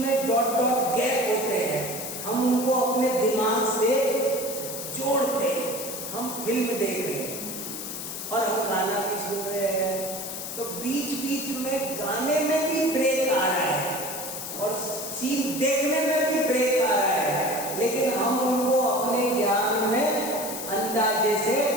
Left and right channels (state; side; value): noise; left; hiss, 7 dB below the sound